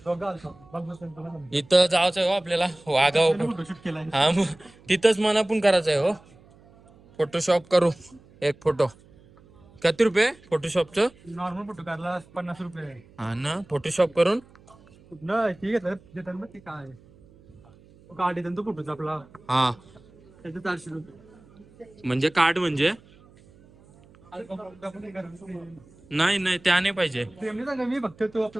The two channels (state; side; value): noise; right; hum, 26 dB below the sound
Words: इथं जायचं आहे हो आपल्याला वागाव. हा मग तिथंच मना पण करायचं आहे हो. फोटोशॉप करू एक फोटो. किती रुपये फोटोशॉपचं? नॉर्मल फोटो काढला 50 रुपये. हा ना फोटोशॉप करून ठीक आहे देतात मग ते काय कार्ड येतात तो फोटोचा आपला. हा त्याचे 400 रुपये. म्हणजे कार्ड म्हणजे नाही नाही त्या नाही पाहिजे. मी फक्त तो